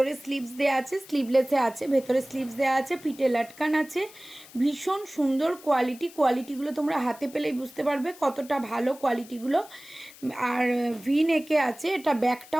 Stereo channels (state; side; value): noise; left; hiss, 20 dB below the sound